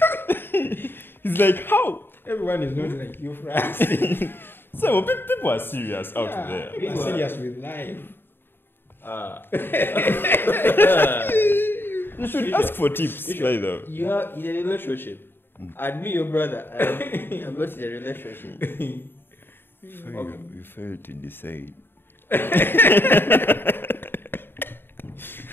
He's like, how? Everyone is not like you, Francis. So people are serious out there. People are serious with life. You should ask for tips. Either. You are in a relationship. And me, your brother, I'm not in a relationship. So you failed to decide.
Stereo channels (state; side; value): late; right; 0.10 ms